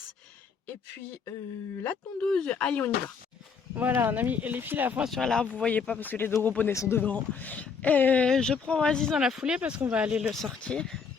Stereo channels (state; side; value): quieter; right; 5.8 dB